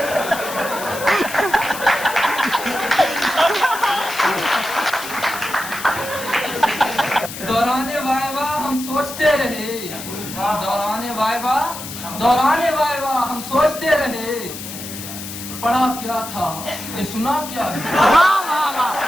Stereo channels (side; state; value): left; noise; hiss, 10 dB below the sound